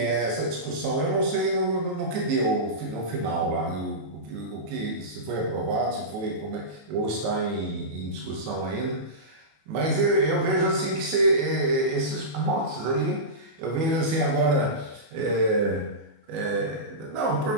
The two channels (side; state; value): left; late; 15 ms